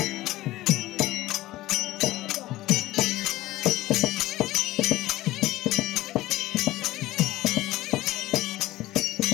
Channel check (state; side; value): quieter; right; 17.0 dB